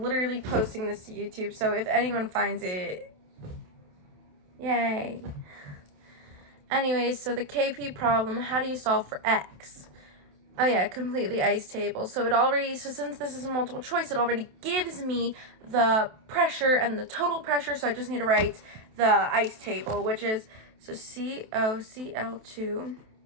literally posting this to YouTube, so if anyone finds it, yay. Anyways, so the KP problem, how do you solve for x? Oh yeah, complete the ice table. So since this is a multiple choice, it already gives me the pressure and the total pressure, so I just need to write the ice table, which is, so COCl2,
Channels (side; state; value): left; late; 27 ms